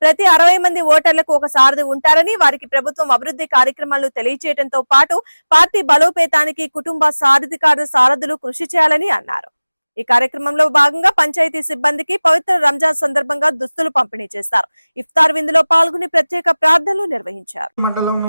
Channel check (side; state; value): both; inverted; correlation -0.99